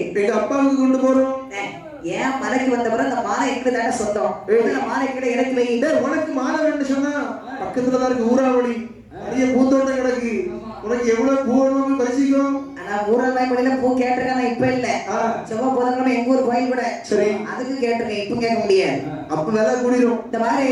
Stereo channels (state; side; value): identical; both; correlation 1.00